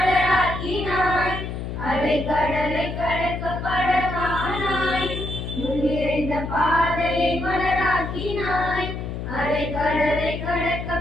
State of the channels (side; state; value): left; noise; hum, 6 dB below the sound